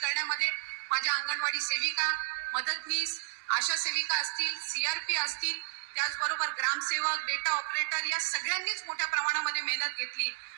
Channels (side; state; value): left; silent; digital silence